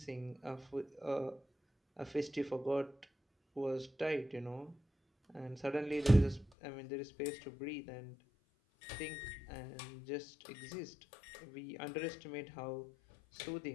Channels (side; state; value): right; drops out; at 6.5 s